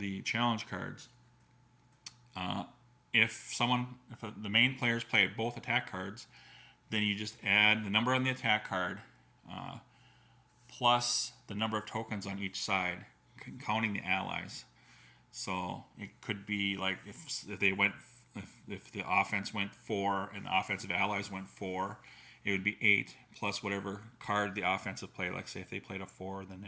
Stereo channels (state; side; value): identical; both; correlation 1.00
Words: challenge cards. If the main players play both attack cards, then you just add the number on the attack card plus the number of tokens on each side, counting the allies. So it could be like if the offense went 4 and the offensive allies went 4, it would be 8 plus whatever card the offensive played. Like say if they played a 4, then